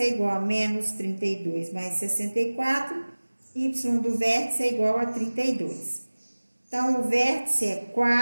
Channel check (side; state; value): both; inverted; correlation -1.00